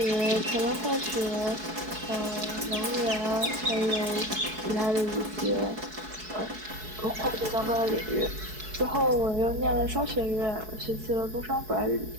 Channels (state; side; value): late; left; 4.7 ms